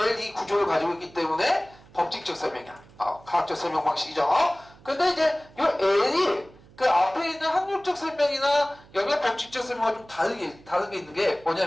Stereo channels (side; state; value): right; noise; hum, 25 dB below the sound